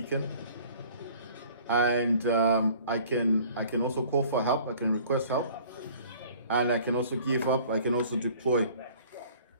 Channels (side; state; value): both; inverted; correlation -0.51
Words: and I can also call for help. I can request help, and I can also give up. I can also deploy.